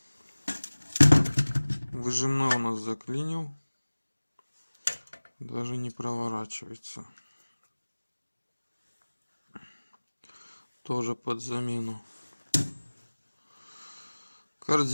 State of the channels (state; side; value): inverted; both; correlation -1.00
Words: Выжимной у нас заклинил. Даже не проворачивается. Тоже под замену.